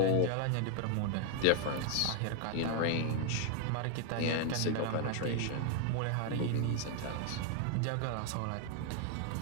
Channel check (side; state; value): both; different; correlation 0.00